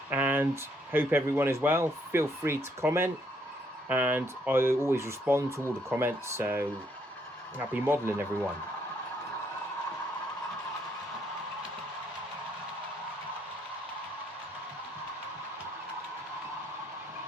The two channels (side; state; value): both; normal; correlation 0.71